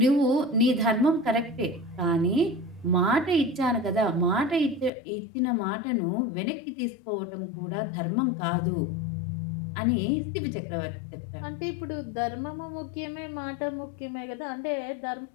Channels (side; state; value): right; drops out; at 4.9 s